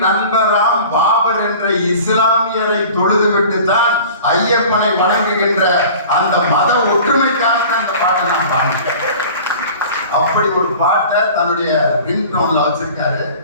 நண்பராம் பாபர் என்ற இஸ்லாமியரை தொழுதுவிட்டு தான் ஐயப்பனை வணங்குகின்ற அந்த மத ஒற்றுமைக்காக அந்த பாட்டை நான் பாடினேன். அப்படி ஒரு பாட்டை தன்னுடைய ரிங்டோன்ல வச்சிருக்காரு.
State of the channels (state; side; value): inverted; both; correlation -0.42